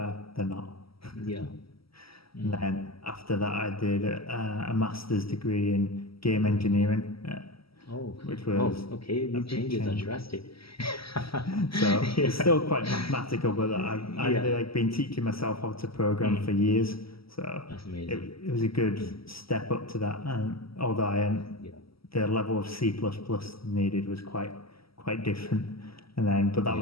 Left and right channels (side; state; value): right; late; 0.75 ms